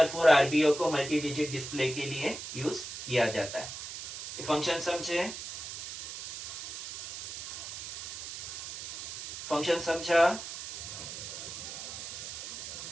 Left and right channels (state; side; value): noise; right; hiss, 8 dB below the sound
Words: 4 आरबीओ को मल्टी डिजिट डिस्प्ले के लिए यूज किया जाता है। ये फंक्शन समझे? फंक्शन समझा?